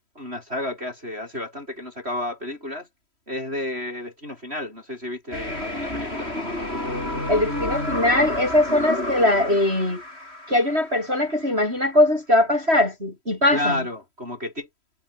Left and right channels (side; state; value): left; late; 3.1 ms